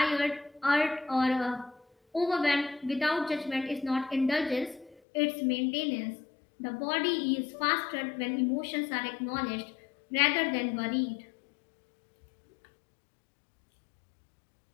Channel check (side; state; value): right; drops out; at 5.0 s